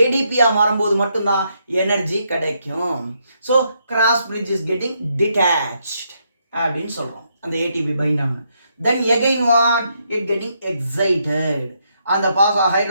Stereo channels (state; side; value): inverted; both; correlation -0.77